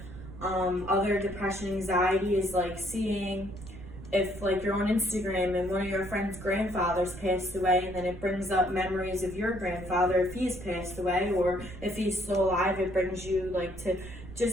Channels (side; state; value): right; noise; rumble, 14 dB below the sound